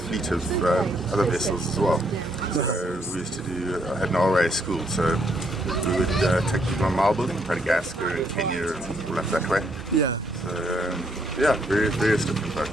of other vessels as well. So we used to I had an RA school, so we would take people on Marlborough, Madagascar and Kenya and all up that way. Yeah. So various different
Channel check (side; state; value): both; normal; correlation 0.72